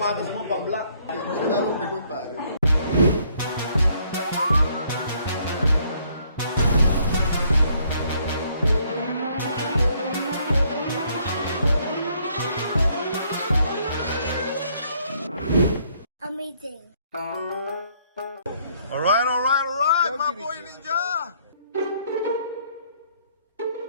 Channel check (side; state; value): both; inverted; correlation -0.67